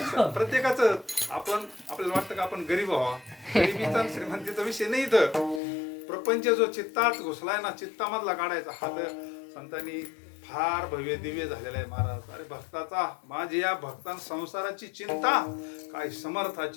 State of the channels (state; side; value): drops out; right; at 5.6 s